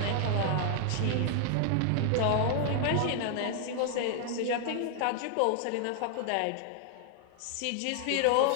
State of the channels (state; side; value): different; both; correlation 0.00